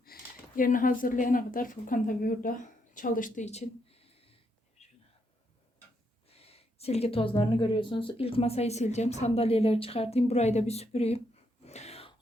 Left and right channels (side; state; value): both; normal; correlation 0.77